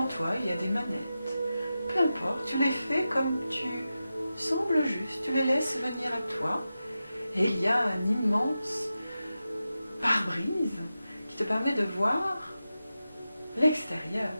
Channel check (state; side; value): inverted; both; correlation -0.92